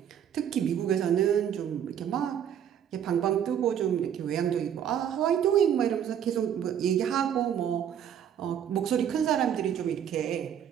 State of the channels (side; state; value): left; quieter; 9.2 dB